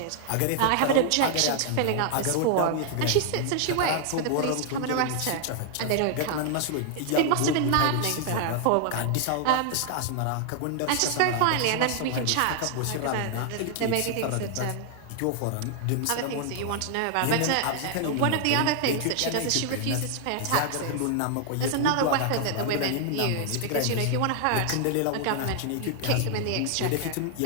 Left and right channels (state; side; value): different; both; correlation 0.00